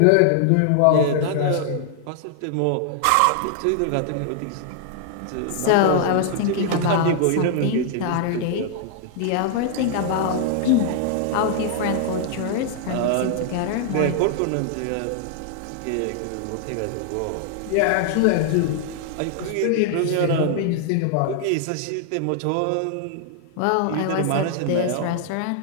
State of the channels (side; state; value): both; different; correlation 0.00